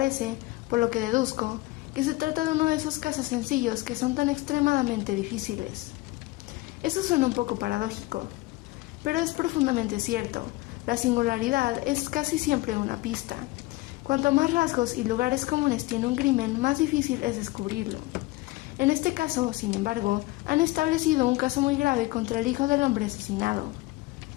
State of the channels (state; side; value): quieter; right; 20.4 dB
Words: por lo que deduzco, que se trata de uno de esos casos sencillos que son tan extremadamente difíciles». Eso suena un poco paradójico, pero es profundamente cierto. La singularidad es casi siempre una pista. Cuanto más rasgos y lugares comunes tiene un crimen, más difícil es descubrirlo. En este caso, sin embargo, han establecido un caso muy grave contra el hijo del hombre asesinado.